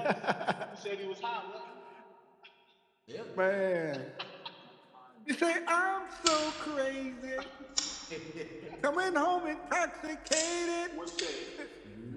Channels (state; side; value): identical; both; correlation 1.00